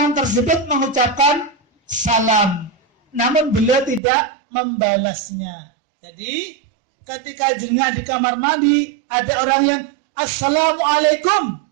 tersebut mengucapkan salam, namun beliau tidak membalasnya. Jadi ketika jengah di kamar mandi ada orang yang assalamualaikum,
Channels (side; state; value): left; drops out; at 4.0 s